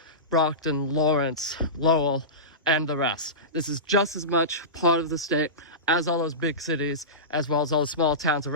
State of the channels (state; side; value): normal; both; correlation -0.20